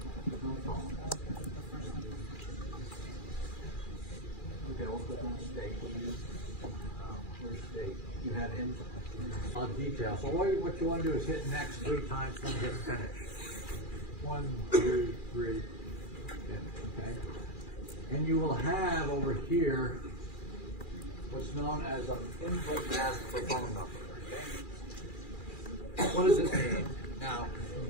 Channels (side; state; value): right; late; 2.4 ms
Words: Okay, we'll click on state. Where's state? You have in detail. So what you want to do is hit next 3 times and hit finish. 1, 2, 3. Okay. And you will have over here what's known as an input mask for phone number. Okay? What does this mean? Now,